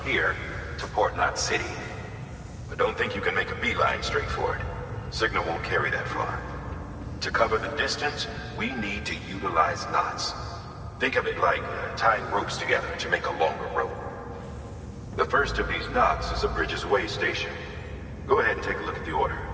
here to Port Knot City. But don't think you can make a beeline straight for it. Signal won't carry that far. To cover the distance, we need to utilize knots. Think of it like tying ropes together to make a longer rope. The first of these knots is a Bridges Way station. Go ahead and take a look at the order.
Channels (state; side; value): identical; both; correlation 1.00